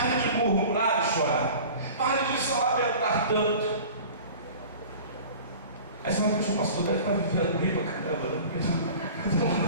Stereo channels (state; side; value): inverted; both; correlation -0.41